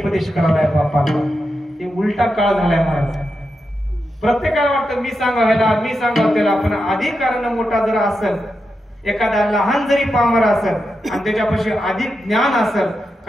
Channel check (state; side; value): normal; both; correlation 0.87